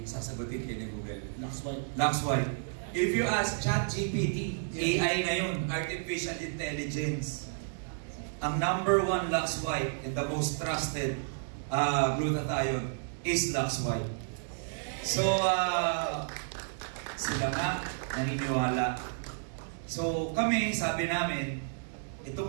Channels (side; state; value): left; silent; digital silence